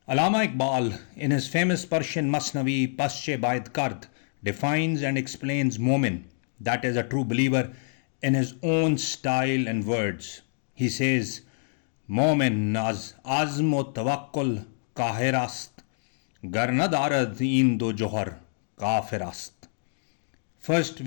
Allama Iqbal, in his famous Persian Masnavi Pasche Baid Kard, defines and explains Momin, that is a true believer, in his own style and words. He says, Momin az azm o tawakkul kahir ast, gar na darad in do johar kafir ast. First,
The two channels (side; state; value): right; silent; digital silence